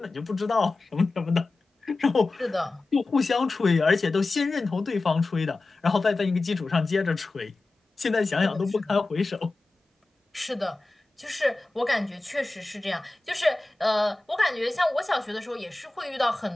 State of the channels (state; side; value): quieter; right; 3.2 dB